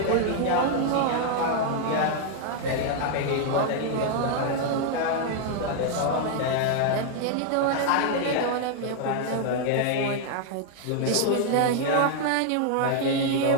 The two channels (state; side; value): different; both; correlation 0.00